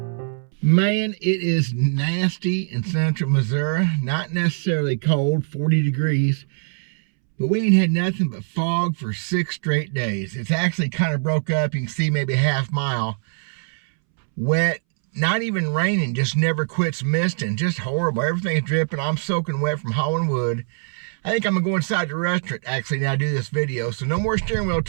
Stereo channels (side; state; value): left; silent; 64 dB below the other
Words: Man, it is nasty in central Missouri. Not necessarily cold, 40 degrees. But we ain't had nothing but fog for 6 straight days. It's actually kind of broke up. You can see maybe a half mile. Wet, not even raining, just never quits misting. Just horrible. Everything's dripping. I'm soaking wet from hauling wood. I think I'm going to go inside the restaurant actually now do this video. So no more steering wheel